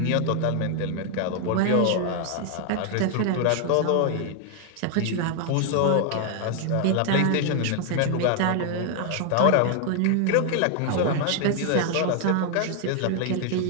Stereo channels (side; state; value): both; different; correlation 0.00